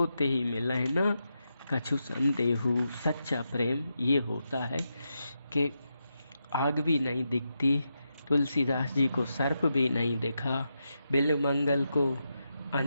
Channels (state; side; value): inverted; both; correlation -0.86